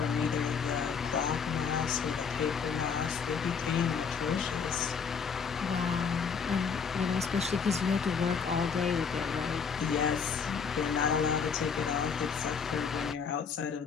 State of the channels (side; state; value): right; quieter; 6.1 dB